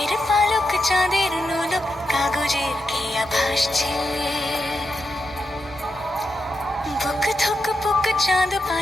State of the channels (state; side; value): normal; both; correlation 0.85